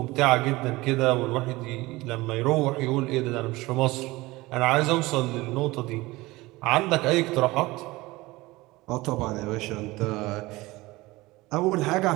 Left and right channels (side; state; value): left; quieter; 20.5 dB